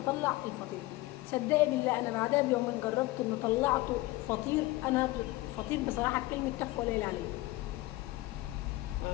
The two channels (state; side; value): quieter; right; 19.3 dB